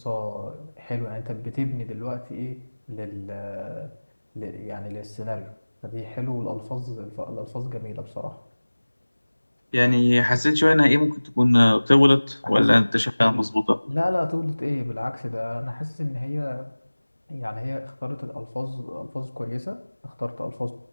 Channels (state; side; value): inverted; both; correlation -1.00